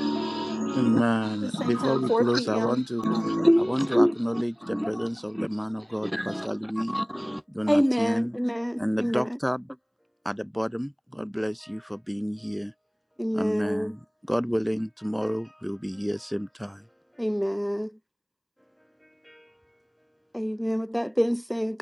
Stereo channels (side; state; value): both; identical; correlation 1.00